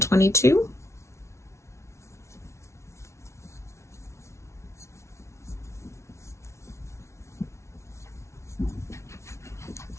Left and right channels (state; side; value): late; right; 0.13 ms